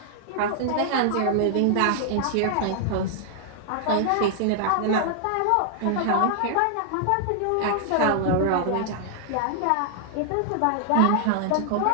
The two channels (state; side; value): different; both; correlation -0.01